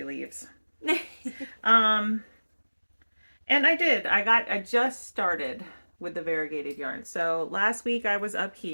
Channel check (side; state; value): both; inverted; correlation -1.00